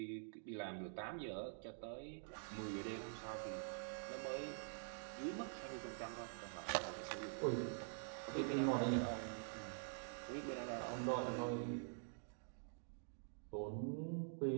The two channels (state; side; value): silent; left; digital silence